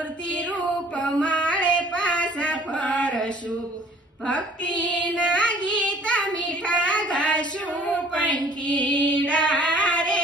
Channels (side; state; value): both; normal; correlation 0.54